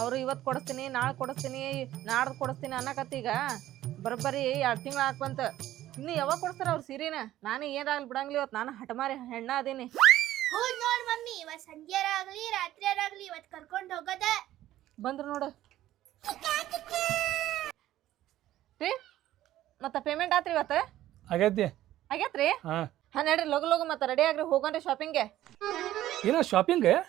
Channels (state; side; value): quieter; left; 13.9 dB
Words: ಅವರು ಇವತ್ತು ಕೊಡಿಸ್ತೀನಿ, ನಾಳೆ ಕೊಡಿಸ್ತೀನಿ, ನಾಡ್ದು ಕೊಡಿಸ್ತೀನಿ ಅನ್ನಕತ್ತಿ. ಈಗ ಬರೋಬ್ಬರಿ 2 ತಿಂಗಳು ಹಾಕ್ಬಂತ. ಇನ್ನು ಯಾವಾಗ ಕೊಡಿಸ್ತಾರ ಅವ್ರು ಸೀರೆನ? ನಾನು ಏನಾಗಲಿ ಬಿಡಂಗಿಲ್ಲ. ಇವತ್ತು ನಾನು ಹಠಮಾರಿ ಹೆಣ್ಣ ಅದೀನಿ. ಹೌದು ನೋಡ್ ಮಮ್ಮಿ, ಇವತ್ತು ಸಂಜೆರಾಗ್ಲಿ ರಾತ್ರಿಯಾರಾಗ್ಲಿ ಇವತ್ತು ಕರ್ಕೊಂಡು ಹೋಗೋದ. ಬಂದ್ರು ನೋಡು ರೀ. ಮತ್ತೆ ಪೇಮೆಂಟ್ ಆತ್ರಿ ಇವತ್ತು? ಆಗೈತಿ. ಆಗೇತ್ರಿ? ಹಾಂ ನಡ್ರಿ ಲಗು ಲಗು ಮತ್ತೆ ರೆಡಿ ಆಗ್ರಿ, ಹೋಗೋಣ್ರಿ ಶಾಪಿಂಗ್ಗೆ. ಏನೋ ಶಾಪಿಂಗ್